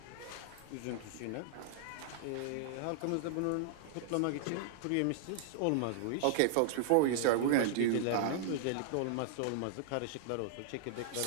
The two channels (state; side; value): different; both; correlation -0.01